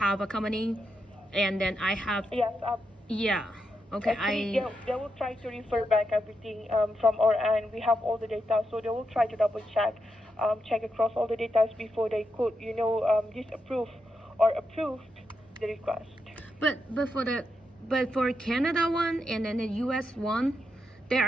a company, and then I have Yes. yeah. Okay, Actually, they will try to refer back everything from our end. We have all the data, so they will try to double check across all the data before they could disapprove or approve the request. But for Canada one and then the US one, there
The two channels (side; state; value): both; normal; correlation 0.84